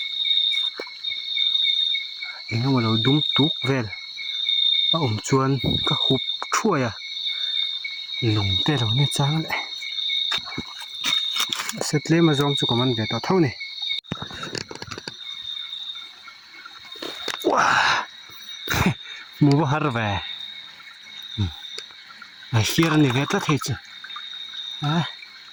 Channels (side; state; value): both; identical; correlation 1.00